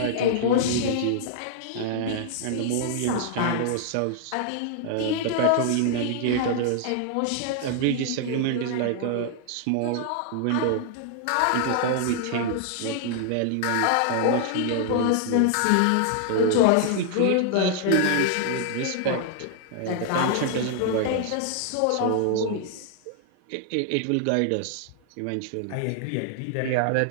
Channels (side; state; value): both; different; correlation 0.00